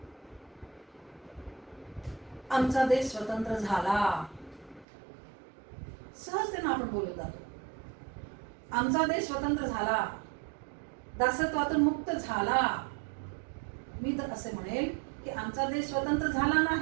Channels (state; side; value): drops out; left; at 4.9 s